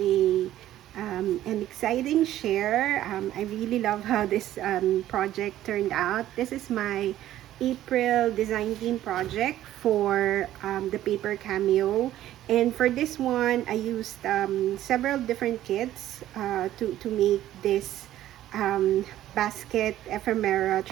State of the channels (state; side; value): quieter; left; 13.2 dB